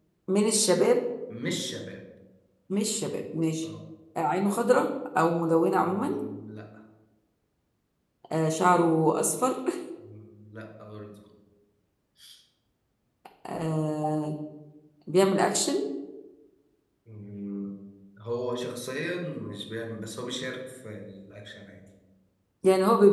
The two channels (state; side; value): identical; both; correlation 1.00